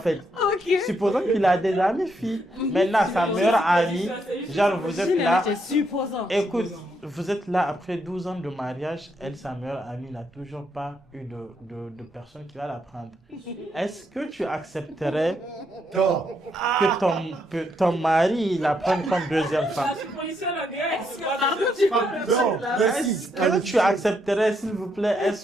Supposons qu'il a des amis filles. Maintenant, sa meilleure amie, genre vous êtes là. Écoute, vous êtes là après 12 ans de mariage. Elle, sa meilleure amie, n'a toujours pas eu de personne qui va la prendre. Est-ce que tu accepterais que ton mari la prenne comme deuxième femme? Est-ce que tu accepterais, s'il vous plaît,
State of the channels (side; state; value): both; normal; correlation 0.77